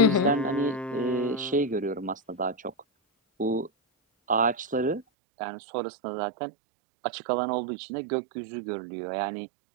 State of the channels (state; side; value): drops out; left; at 5.1 s